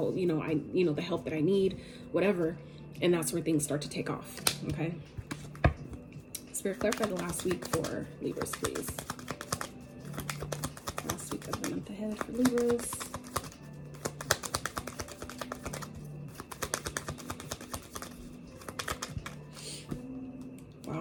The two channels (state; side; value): identical; both; correlation 1.00